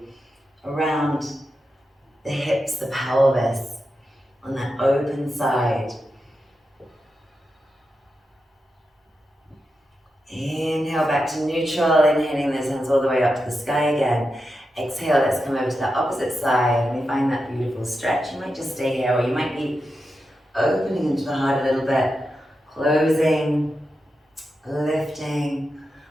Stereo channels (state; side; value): normal; both; correlation 0.89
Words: around the hips, the pelvis, on that open side. Inhale back to neutral, inhaling those hands all the way up to the sky again. Exhale, let's come over to the opposite side and we find that beautiful stretch. You might just stay here or you might be opening into the heart a little bit, closing, lifting,